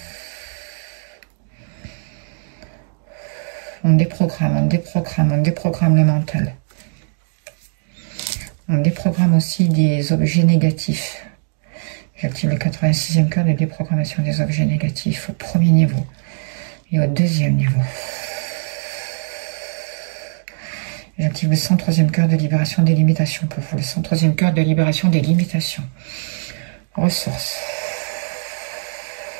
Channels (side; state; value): left; silent; digital silence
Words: On déprogramme, on déprogramme, on déprogramme le mental. On déprogramme aussi des objets négatifs. J'active le 86e cœur de déprogrammation des objets négatifs au premier niveau et au deuxième niveau. J'active le 103e cœur de libération des limitations pour vous. Le 103e cœur de libération des limitations. Ressources.